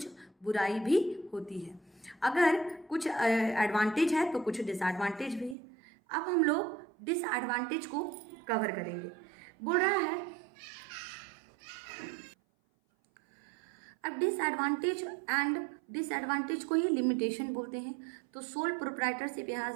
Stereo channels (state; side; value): drops out; left; at 5.6 s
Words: बुराई भी होती है। अगर कुछ एडवांटेज है तो कुछ डिसएडवांटेज भी है। अब हम लोग डिसएडवांटेज को कवर करेंगे। बोल रहा है अब डिसएडवांटेज एंड डिसएडवांटेज को ही लिमिटेशन बोलते हैं। तो सोल प्रोप्राइटरशिप, यहाँ